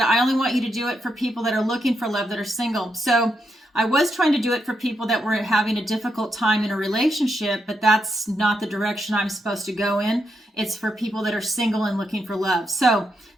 only want you to do it for people that are looking for love, that are single. So I was trying to do it for people that were having a difficult time in a relationship, but that's not the direction I'm supposed to go in. It's for people that are single and looking for love. So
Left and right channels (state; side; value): normal; both; correlation 0.82